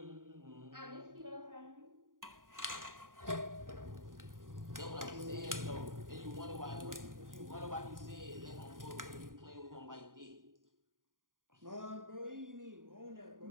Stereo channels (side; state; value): left; late; 0.90 ms